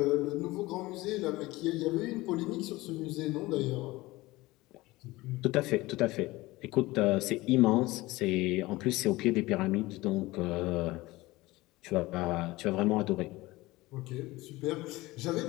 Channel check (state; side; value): quieter; right; 19.8 dB